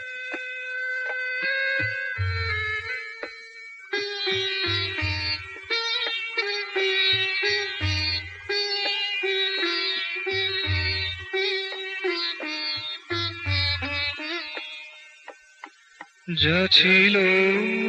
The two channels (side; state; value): both; identical; correlation 1.00